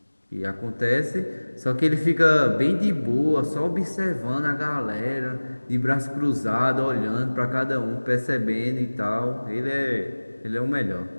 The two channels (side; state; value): both; inverted; correlation -1.00